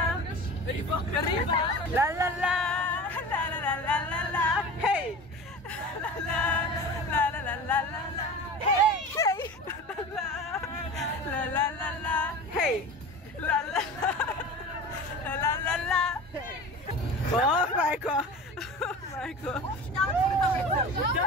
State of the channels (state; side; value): normal; both; correlation 0.34